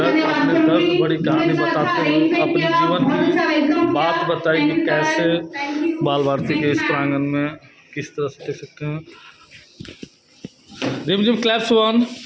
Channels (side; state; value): both; identical; correlation 1.00